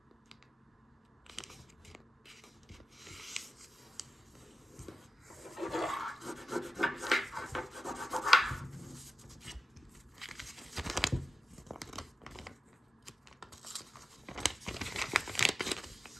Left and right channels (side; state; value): both; normal; correlation 0.93